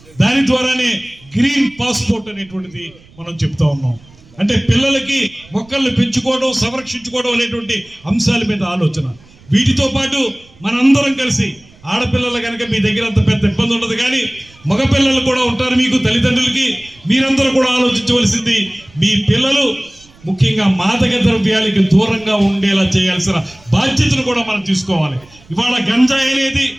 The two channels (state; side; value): noise; right; rumble, 26 dB below the sound